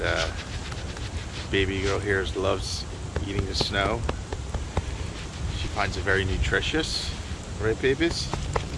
baby girl here loves eating the snow. She finds it very nutritious, right, babies?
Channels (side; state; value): both; identical; correlation 1.00